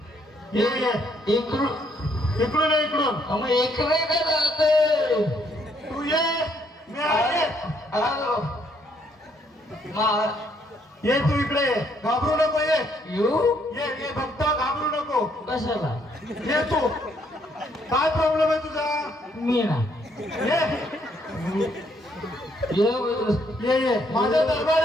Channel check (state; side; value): normal; both; correlation 0.70